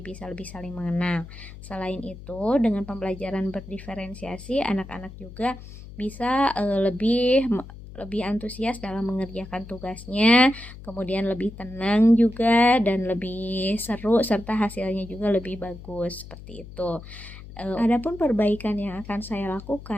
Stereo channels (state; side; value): noise; left; hum, 15 dB below the sound